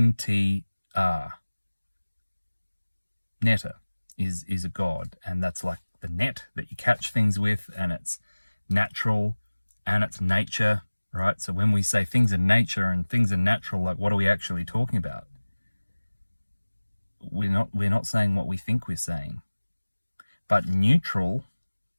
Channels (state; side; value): inverted; both; correlation -1.00